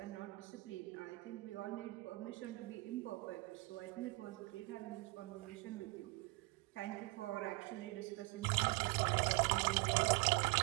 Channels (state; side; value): quieter; left; 23.5 dB